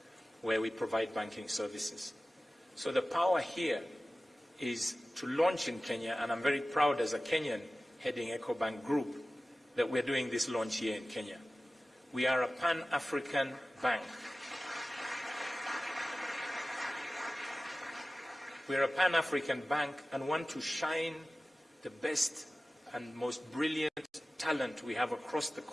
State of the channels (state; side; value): normal; both; correlation 0.96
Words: where we provide banking services. So the power here is to launch in Kenya, and I'm very proud as a Kenyan heading Ecobank Group that we're doing this launch here in Kenya. We are a Pan-African bank. We're a Pan-African bank and want to shine the best and most brilliant talent we have across the